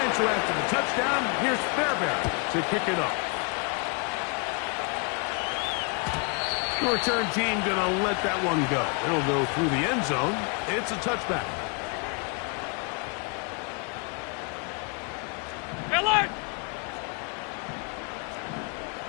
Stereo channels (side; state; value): right; quieter; 35.2 dB